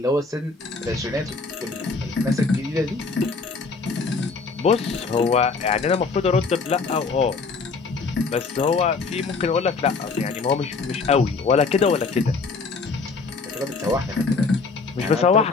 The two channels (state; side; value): quieter; right; 4.4 dB